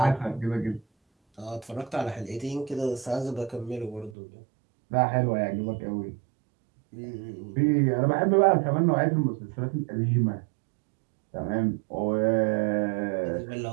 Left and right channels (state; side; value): drops out; left; at 4.2 s